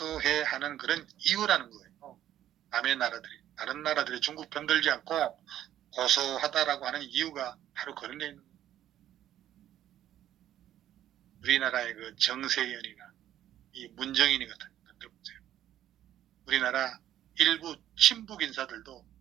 하는 그런 이유라는 거예요. 남의 나라들이 다른 나라들이 중국 편들지 않고 고소하다라고 하는 이유가 바로 그런 게 있는 거예요. 우리나라의 그 정세현이나 이 문정인이 같은 분들 보세요. 우리나라 일부 친북 인사들도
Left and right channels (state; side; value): quieter; left; 11.9 dB